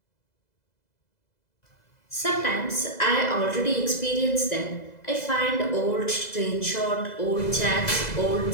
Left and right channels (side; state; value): right; late; 2.0 ms